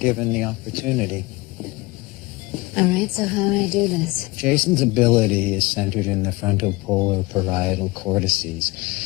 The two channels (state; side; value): quieter; right; 22.4 dB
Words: the opportunity. All right, so how do I do this? Jason's ability is centered in the frontal polar parietal cortices.